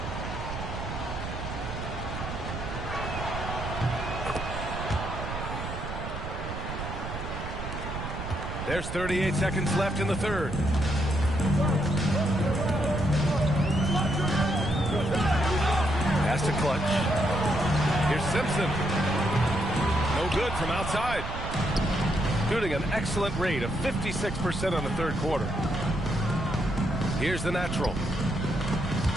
There's 38 seconds left in the third. Pass to Clutch. Here's Simpson. No good from outside. Shooting an excellent rate of 56% on the third quarter. Here's the natural.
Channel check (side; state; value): right; noise; rumble, 7 dB below the sound